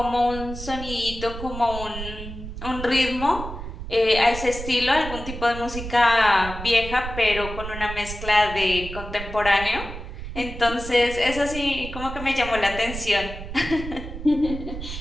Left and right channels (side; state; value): right; noise; rumble, 9 dB below the sound